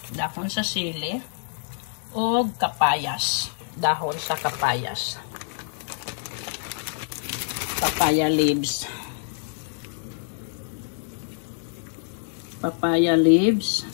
o kapayas, dahon sa kapayas, papaya leaves,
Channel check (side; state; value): right; silent; digital silence